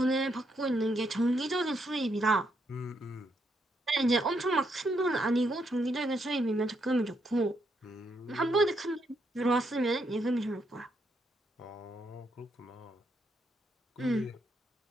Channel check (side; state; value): both; normal; correlation 0.78